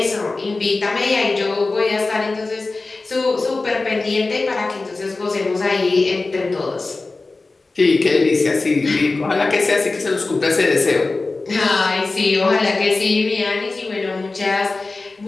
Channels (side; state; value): right; quieter; 3.5 dB